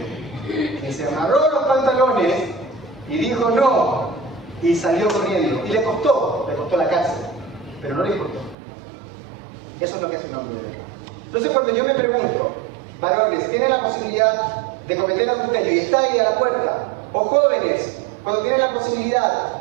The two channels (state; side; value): drops out; left; at 8.6 s